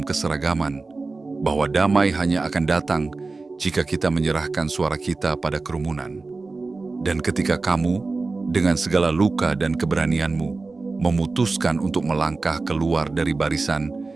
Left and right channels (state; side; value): quieter; left; 3.7 dB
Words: keseragaman, bahwa damai hanya akan datang jika kita menyerahkan suara kita pada kerumunan. Dan ketika kamu, dengan segala luka dan keberanianmu, memutuskan untuk melangkah keluar dari barisan,